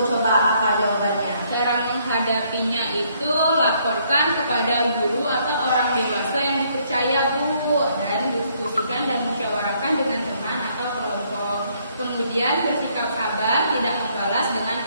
Coba apa jawabannya? Cara menghadapinya itu laporkan kepada guru atau orang dewasa yang dipercaya, Bu, dan diskusikan dan musyawarahkan dengan teman atau kelompok. Kemudian bersikap sabar, tidak membalas dengan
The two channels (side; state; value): both; inverted; correlation -0.68